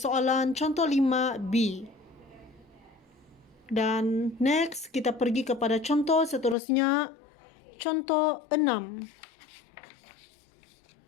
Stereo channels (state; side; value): drops out; right; at 6.6 s